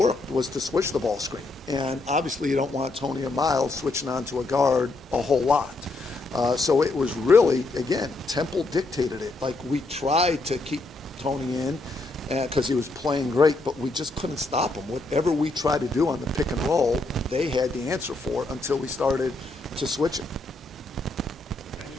was to switch the ball screen. And obviously you don't want Tony and Miles switching onto a guard a whole lot. So it was really, again, Temple dictated it. Like, we tried to keep Tony in because he was playing great, but we just couldn't stop him. Whatever we tried to do on the pick and roll, they had the answer for it until we started to switch it.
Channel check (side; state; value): right; quieter; 3.2 dB